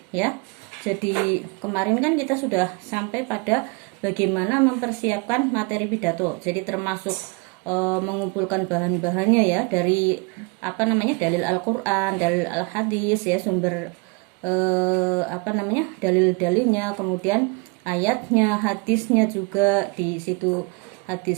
ya. Jadi kemarin kan kita sudah sampai pada bagaimana mempersiapkan materi pidato. Jadi termasuk mengumpulkan bahan-bahannya ya, dari apa namanya dalil Al-Qur'an, dalil Al-Hadis ya, sumber apa namanya dalil-dalilnya, kemudian ayatnya, hadisnya juga di situ,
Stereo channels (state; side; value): quieter; left; 30.7 dB